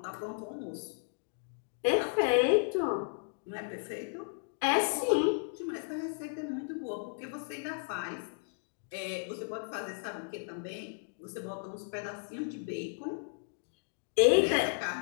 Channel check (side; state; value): right; silent; digital silence